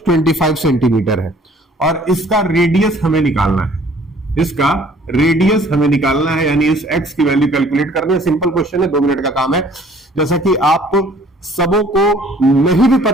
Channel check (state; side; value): normal; both; correlation 0.55